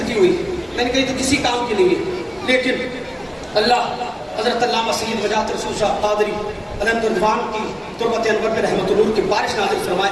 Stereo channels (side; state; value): both; identical; correlation 1.00